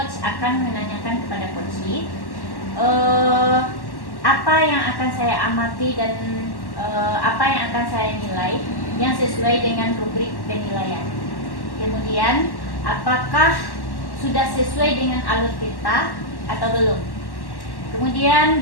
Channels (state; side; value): late; right; 1.1 ms